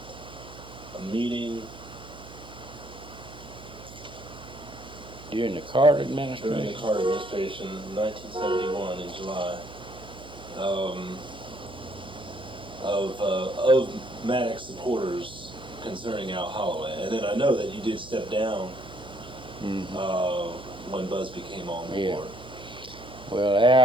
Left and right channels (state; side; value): noise; right; hum, 17 dB below the sound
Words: A meeting During the Carter administration? during the Carter administration, 1971 in July, of Maddox supporters concerning Al Holloway. And then I know that you did step down when Busby came on board. Yeah. Well,